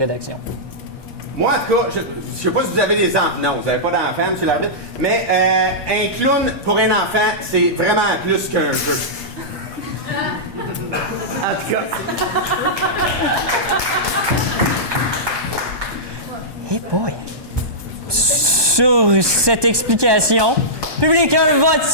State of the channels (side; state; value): left; late; 1.2 ms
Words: Moi, en tout cas, je sais pas si vous avez des enfants. Non, vous n'avez pas d'enfants, monsieur l'arbitre. Mais un clown, pour un enfant, c'est vraiment plus qu'un jeu. En tout cas. Hey boy! Sur cette explication, public, un vote,